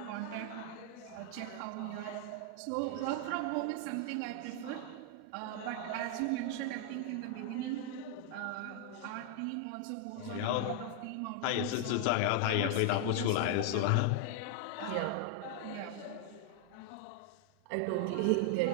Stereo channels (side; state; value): both; different; correlation 0.00